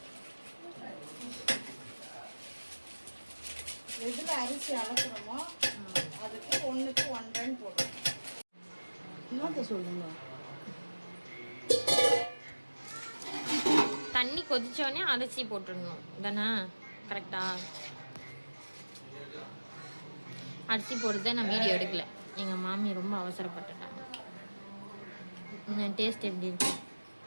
எதில் அரிசி அளக்குறோமோ அதுக்கு 1க்கு 1.5 போடுறோம். என்னத்தை சொல்லுங்க. தண்ணி கொதிச்சோடனே அரிசி போட்டுடணும் தானே? கரெக்டா? அரிசி போடுறத நான் வீடியோ எடுக்கல. எங்கள் மாமி ரொம்ப அவசரப்பட்டுட்டாங்க. டேஸ்ட் எப்படி இருக்கு?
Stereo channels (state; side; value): inverted; both; correlation -1.00